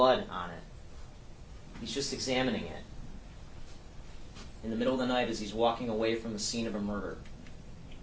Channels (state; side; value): identical; both; correlation 1.00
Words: on it. He's just examining it in the middle of the night as he's walking away from the scene of a murder.